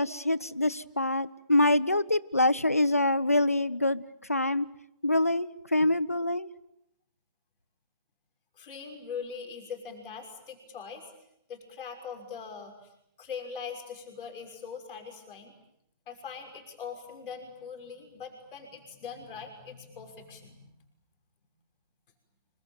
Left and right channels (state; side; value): inverted; both; correlation -0.73